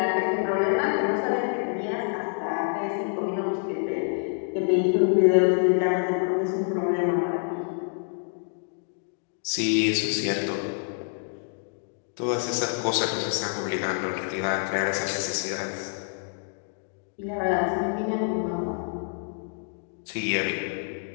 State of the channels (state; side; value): silent; right; 60 dB below the other